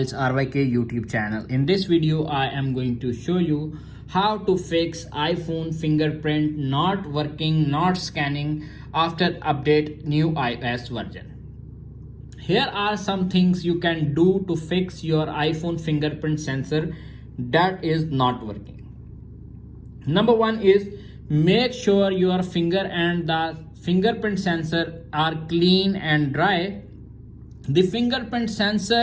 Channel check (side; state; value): both; identical; correlation 1.00